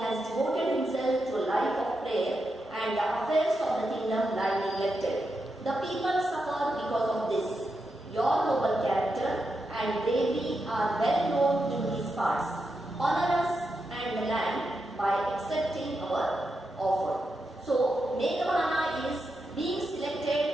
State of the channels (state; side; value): normal; both; correlation 0.86